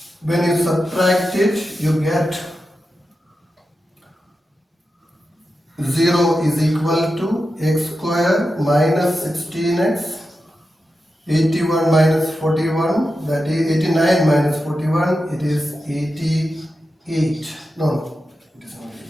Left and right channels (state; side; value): normal; both; correlation 0.90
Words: When you subtract it, you get 0 is equal to x square minus 16x, 81 minus 41, that is 89 minus 41, it is 88. No, it is not